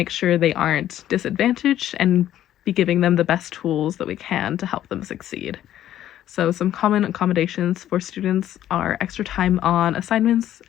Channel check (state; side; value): quieter; right; 12.1 dB